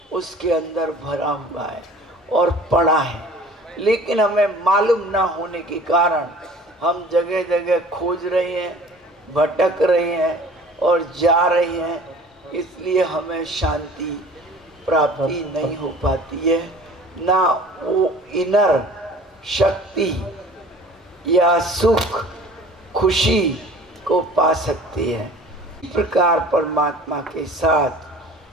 उसके अंदर भरा हुआ है और पड़ा है। लेकिन हमें मालूम ना होने के कारण हम जगह जगह खोज रहे हैं, भटक रहे हैं और जा रहे हैं, इसलिए हमें शांति प्राप्ति नहीं हो पाती है, ना वो इनर शक्ति या सुख खुशी को पा सकते हैं। इस प्रकार परमात्मा के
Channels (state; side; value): normal; both; correlation 0.46